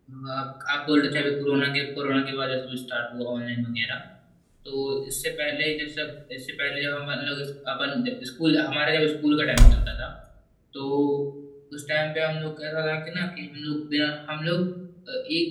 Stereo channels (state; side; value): identical; both; correlation 1.00